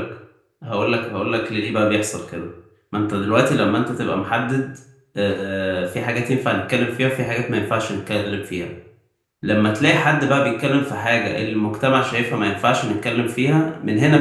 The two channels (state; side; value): identical; both; correlation 1.00